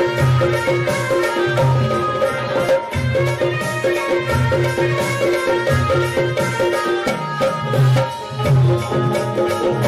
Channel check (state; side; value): identical; both; correlation 1.00